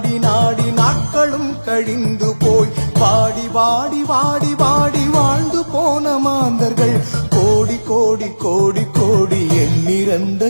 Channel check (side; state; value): both; inverted; correlation -1.00